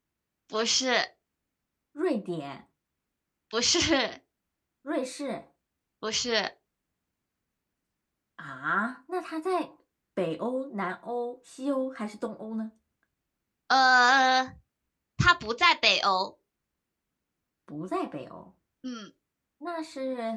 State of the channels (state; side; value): identical; both; correlation 1.00